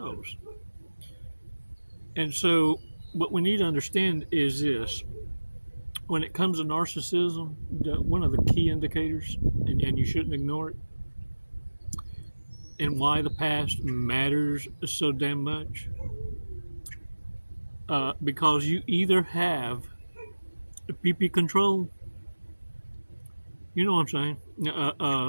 And so what we need to understand is this. When it comes to narcissism, one of the key indicators, and you shouldn't ignore it, and why the past matters so damn much, because you either have PP control, you know what I'm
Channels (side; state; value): both; inverted; correlation -1.00